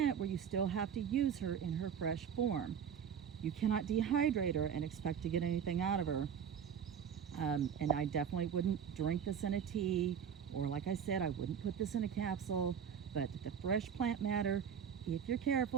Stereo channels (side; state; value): left; quieter; 7.9 dB